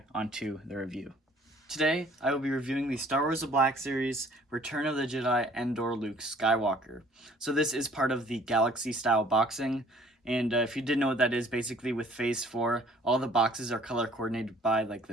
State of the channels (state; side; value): normal; both; correlation 0.56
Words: on to the review. Today, I will be reviewing the Star Wars The Black Series, Return of the Jedi, Endor, Luke Skywalker. So this is part of the Galaxy-style boxing, and if you didn't know what that is, basically with Phase 4, all the boxes are color-coordinated by, like,